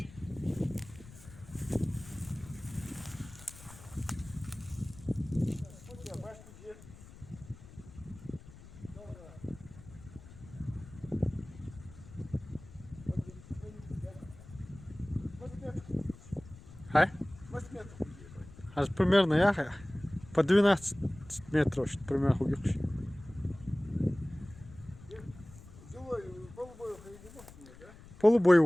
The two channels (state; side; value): noise; left; rumble, 18 dB below the sound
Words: А? Аж примерно я по 12 метров, примерно хугивший.